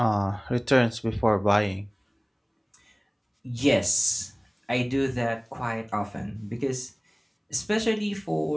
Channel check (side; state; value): both; identical; correlation 1.00